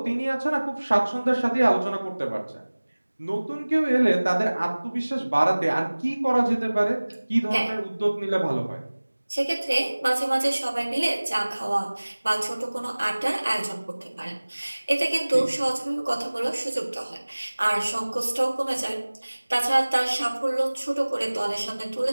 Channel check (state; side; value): inverted; both; correlation -1.00